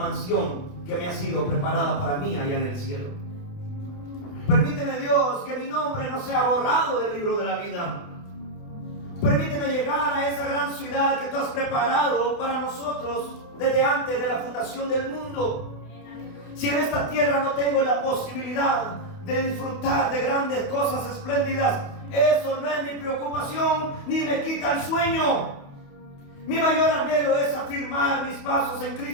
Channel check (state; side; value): late; right; 28 ms